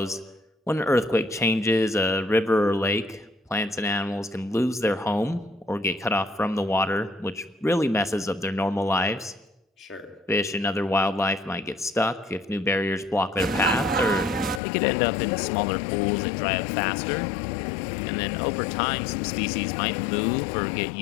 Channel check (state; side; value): drops out; right; at 14.6 s